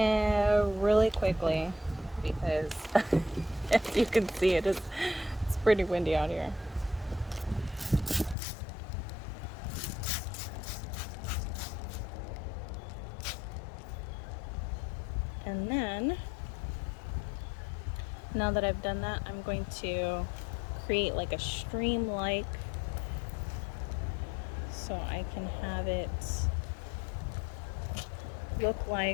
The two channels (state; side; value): drops out; right; at 8.3 s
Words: quickly, because as you can see, it's pretty windy out here. And then, now that I've done that, I'm going to create like a stream-like, so I can have it look